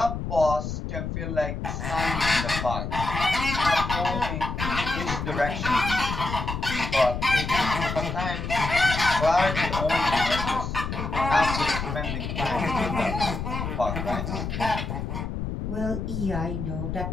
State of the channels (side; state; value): left; noise; rumble, 4 dB below the sound